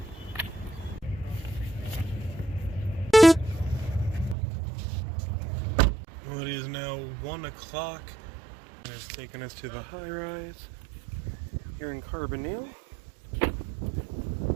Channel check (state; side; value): drops out; left; at 4.4 s